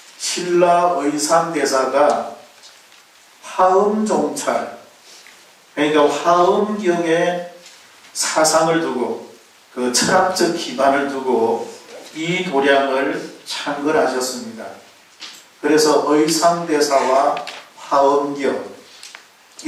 신라 의상대사가 화엄종찰, 그러니까 화엄경에 사상을 두고 그 철학적 기반을 두고 이 도량을 창건하셨습니다. 그래서 의상대사와 화엄경이라고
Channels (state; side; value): identical; both; correlation 1.00